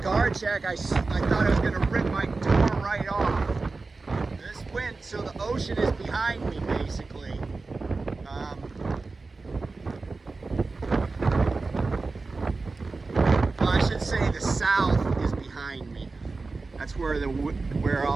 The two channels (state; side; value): quieter; left; 3.8 dB